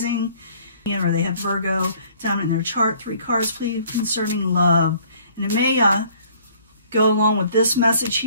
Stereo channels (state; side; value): inverted; both; correlation -0.57